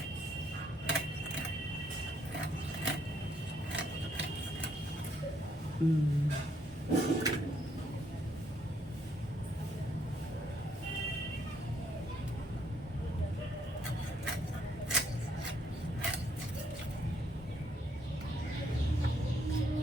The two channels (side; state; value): both; normal; correlation 0.70